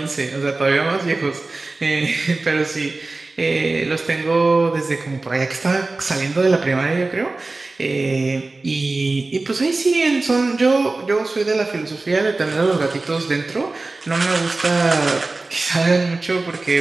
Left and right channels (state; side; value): quieter; left; 3.4 dB